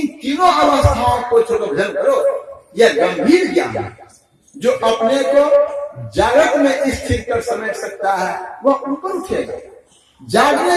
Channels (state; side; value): identical; both; correlation 1.00